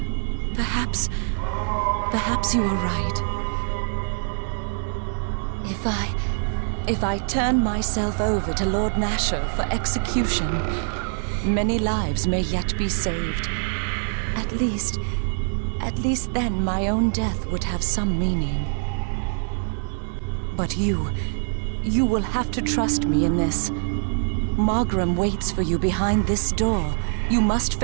Perhaps you are right. If I turn myself over to Lord Nasher for execution, many lives may yet be saved. At least then my own death would have some meaning. But you will have to trust me in this. Margrim waits for you behind this door. You must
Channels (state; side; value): silent; left; 62 dB below the other